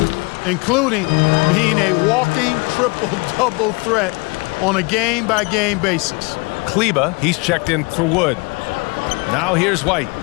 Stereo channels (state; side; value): quieter; right; 28.6 dB